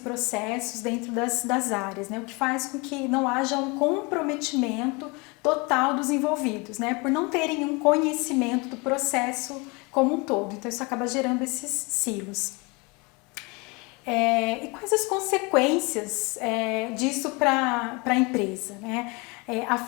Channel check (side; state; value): right; quieter; 28.0 dB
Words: dentro das áreas, né, o que faz com que não haja um comprometimento total dos envolvidos, né? Por não terem um conhecimento do processo como um todo. Então, isso acaba gerando esses silos. E quais as consequências disso para a empresa, né? A